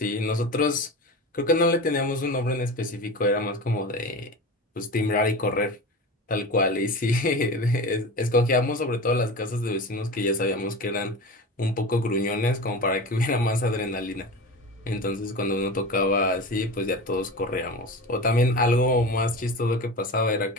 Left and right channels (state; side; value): normal; both; correlation 0.30